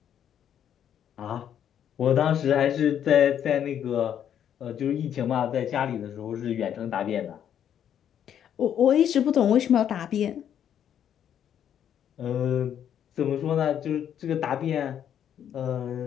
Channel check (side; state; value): right; quieter; 9.5 dB